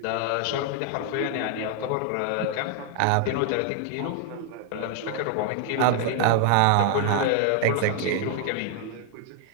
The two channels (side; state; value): both; different; correlation 0.00